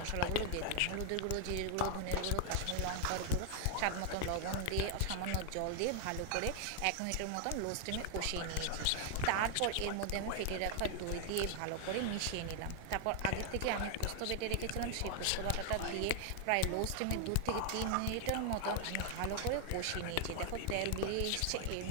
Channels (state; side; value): different; both; correlation 0.00